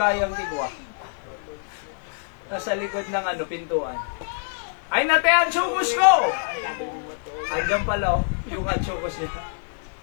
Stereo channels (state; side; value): silent; right; digital silence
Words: tigwa. Nasa likod ng pintuan. Ay, natay ang chukos ko! Andiyan pala, yung chukos niya.